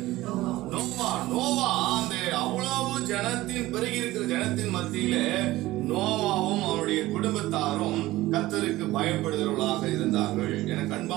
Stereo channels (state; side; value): quieter; left; 17.4 dB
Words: நோவா. நோவா அந்த அவ்வளவு ஜனத்தின் பெருகி இருக்கிற ஜனத்தின் மத்தியில நோவாவும் அவருடைய குடும்பத்தாரும் கர்த்தருக்கு பயப்படுகிறவர்களாக இருந்தார்கள். எனக்கு